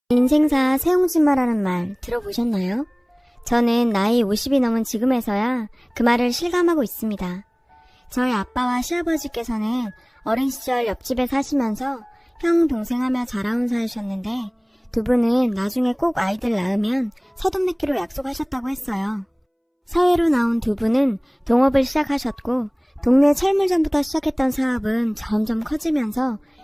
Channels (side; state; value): both; identical; correlation 1.00